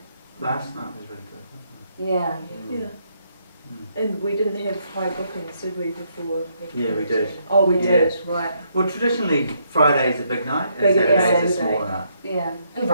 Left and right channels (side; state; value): both; inverted; correlation -0.74